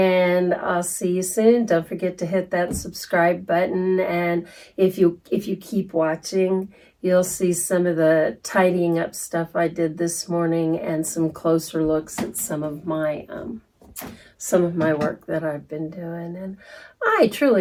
I'll see you soon. Don't forget to hit that subscribe button, and if you keep watching, you'll see some of the tidying up stuff I did this morning and some closer looks at some of my work that I've been doing. And I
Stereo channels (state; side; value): identical; both; correlation 1.00